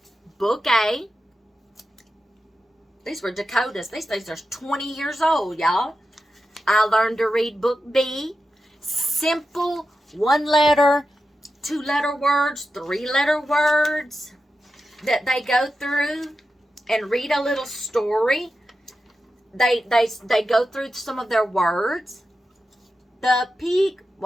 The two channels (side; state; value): both; normal; correlation 0.91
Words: book A. These were Dakotas. These things are 20 years old, y'all. I learned to read book B. Simple 1-letter, 2-letter words, 3-letter words that they go through and read a little story. They go through some of their words. The pig